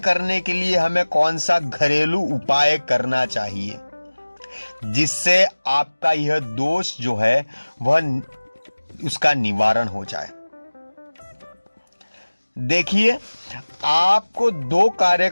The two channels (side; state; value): both; inverted; correlation -1.00